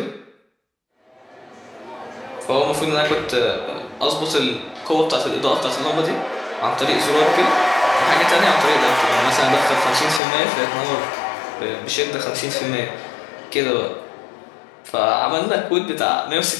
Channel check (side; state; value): right; drops out; at 10.2 s